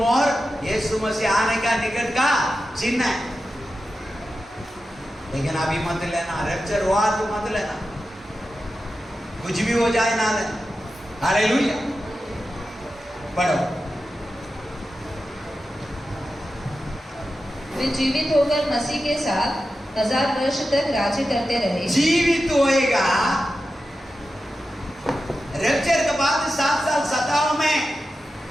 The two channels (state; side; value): normal; both; correlation 0.92